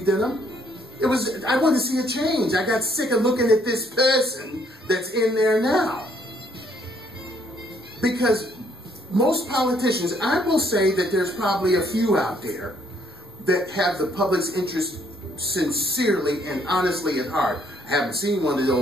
in him. It was, I wanted to see a change. I got sick of looking at this person that's in there now. Because most politicians, I will say that there's probably a few out there that have the public's interest sincerely and honestly at heart. I haven't seen one of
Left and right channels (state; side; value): normal; both; correlation 0.67